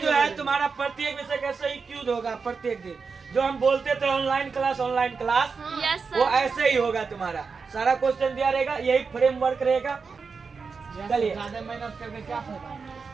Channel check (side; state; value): left; quieter; 5.1 dB